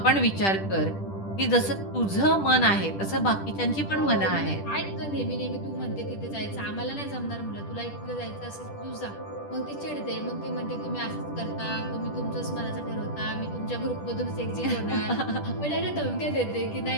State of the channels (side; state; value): right; late; 10 ms